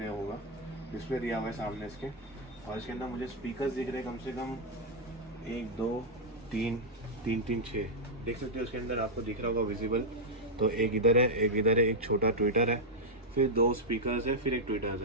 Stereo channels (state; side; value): normal; both; correlation -0.03